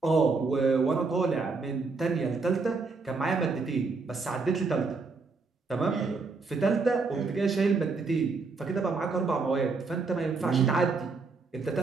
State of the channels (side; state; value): left; quieter; 4.2 dB